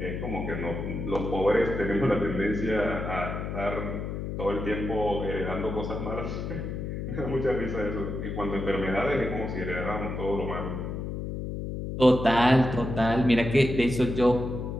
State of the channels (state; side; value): noise; left; hum, 5 dB below the sound